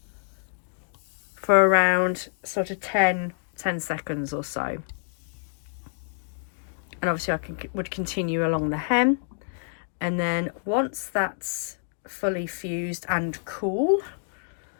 for around sort of 10 seconds or so. And obviously I would continue along the hem, and then once that's fully fused and cool,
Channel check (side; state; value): right; silent; digital silence